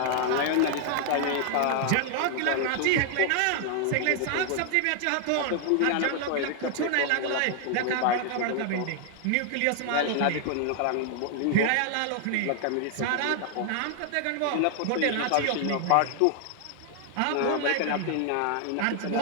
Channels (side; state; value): both; different; correlation 0.00